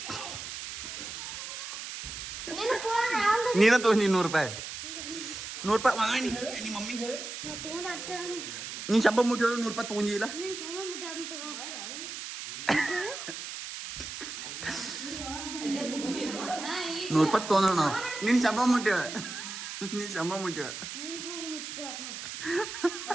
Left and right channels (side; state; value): right; noise; hiss, 8 dB below the sound